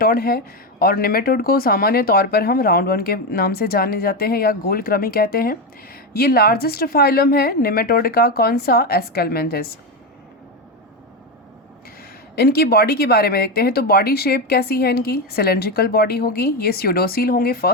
है और निमेटोड को सामान्य तौर पर हम राउंड वर्म के नाम से जाने जाते हैं या गोल कृमि कहते हैं। ये लार्जेस्ट फाइलम है निमेटोड का। कौन सा? एस्केलमेंथिस। इनकी बॉडी के बारे में देखते हैं तो बॉडी शेप कैसी है इनकी? सिलेंड्रिकल बॉडी होगी। ये स्यूडोसिल होंगे,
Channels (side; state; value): both; normal; correlation 0.12